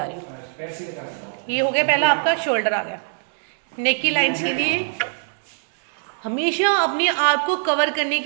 रही हूँ। ये हो गया पहला आपका शोल्डर आ गया। नेक की लाइंस के लिए हमेशा अपने आप को कवर करने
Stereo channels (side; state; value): left; silent; digital silence